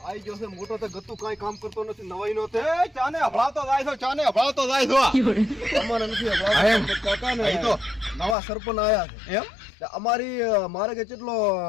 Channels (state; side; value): drops out; right; at 8.3 s